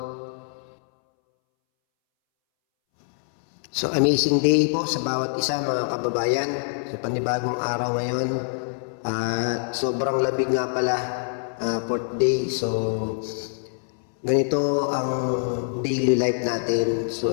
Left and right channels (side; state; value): right; silent; 62 dB below the other